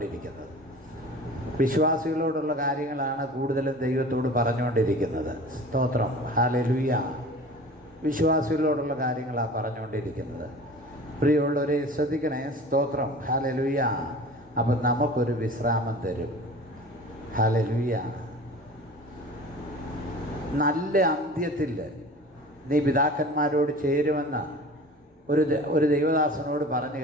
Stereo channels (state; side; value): normal; both; correlation 0.40